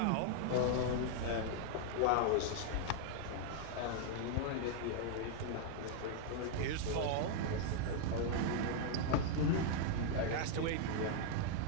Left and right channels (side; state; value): both; different; correlation -0.01